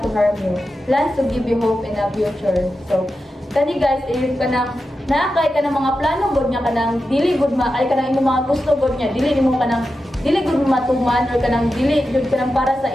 to harm you. Plans to give you hope in a future. So, kani guys, ayun ka nang naakay ka ng mga plano god niya kanang dili gud maakay ka ng imong mga gusto god niya dili nimo kanang dili gud matuman or kanang dili jud kanang para sa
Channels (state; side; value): normal; both; correlation 0.90